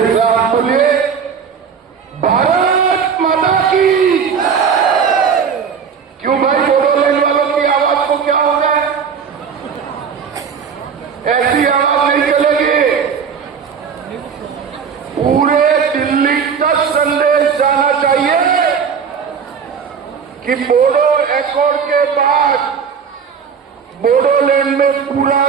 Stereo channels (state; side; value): quieter; left; 6.6 dB